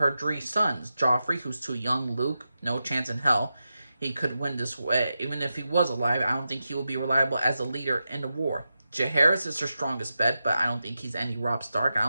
three sons. Joffrey, who's too young. Luke, no chance in hell he could win this way. Even if he was alive, I don't think he will be reliable as a leader in the war. Jaehaerys is her strongest bet, but I don't think he's any Robb Stark. I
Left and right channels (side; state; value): both; inverted; correlation -0.90